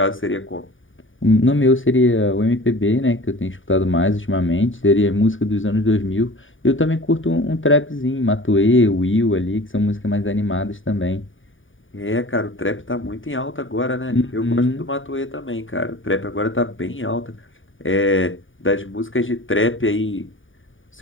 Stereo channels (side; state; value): right; late; 0.57 ms